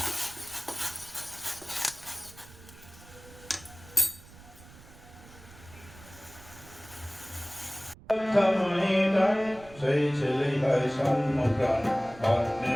সেই ছেলেই হয় সম্মুখান অন্যে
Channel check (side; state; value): right; noise; rumble, 21 dB below the sound